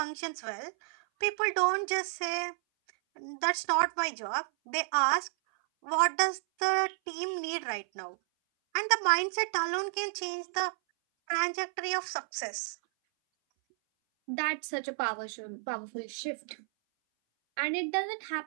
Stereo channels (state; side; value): silent; left; 57 dB below the other